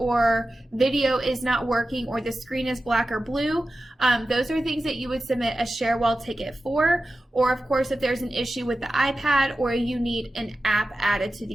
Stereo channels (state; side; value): normal; both; correlation 0.94